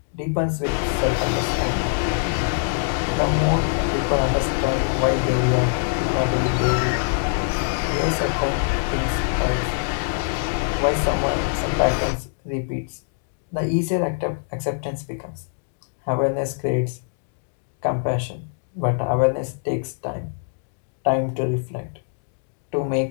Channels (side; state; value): right; silent; digital silence